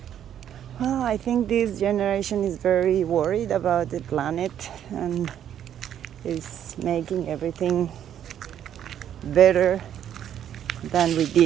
Well, I think this generation is very worried about the planet and is making everything better than we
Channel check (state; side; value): quieter; left; 10.0 dB